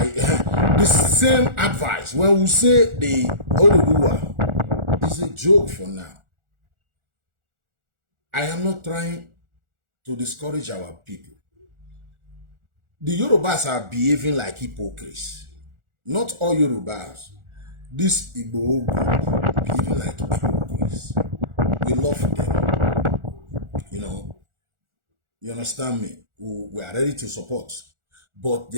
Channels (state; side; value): late; left; 1.4 ms